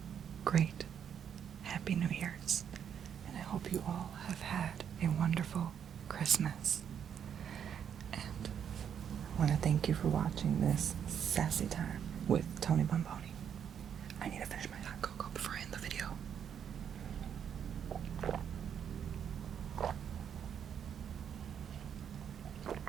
great, happy New Year's. And I hope you all have had a wonderful Christmas. And I want to thank you for watching this Sassy Time with Tony Bomboni. I need to finish my hot cocoa before I end the video.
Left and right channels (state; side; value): quieter; left; 8.3 dB